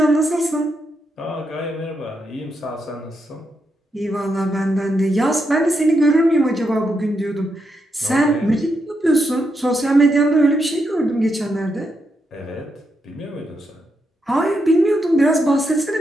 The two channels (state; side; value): normal; both; correlation 0.82